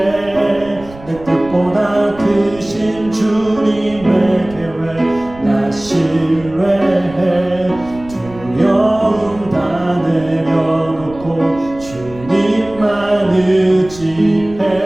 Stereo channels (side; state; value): right; noise; rumble, 19 dB below the sound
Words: 내 뜻보다 크신 주님의 계획 나 신뢰해. 두려움 다 내려놓고 주님만